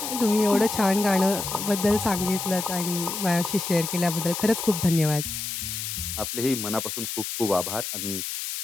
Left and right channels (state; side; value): noise; left; hiss, 5 dB below the sound